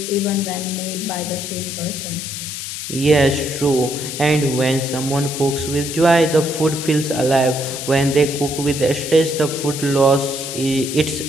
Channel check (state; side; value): noise; left; hiss, 7 dB below the sound